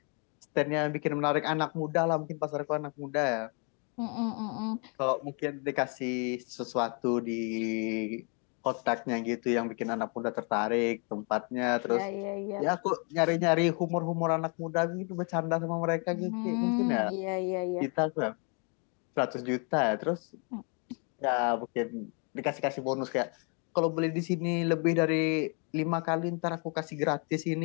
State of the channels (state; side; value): quieter; right; 36.7 dB